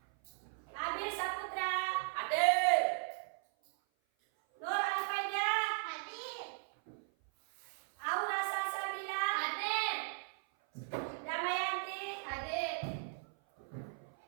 Abil Saputra, Hadir. Nur Alfaida, Hadir. Aura Salsabila, Hadir. Damayanti, Hadir.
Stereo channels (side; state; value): left; silent; 53 dB below the other